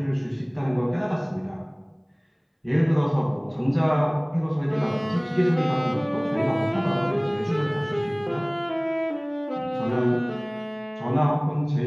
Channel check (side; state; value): both; identical; correlation 1.00